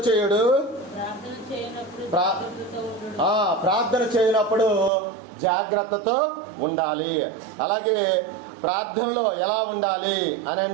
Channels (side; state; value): left; drops out; at 4.9 s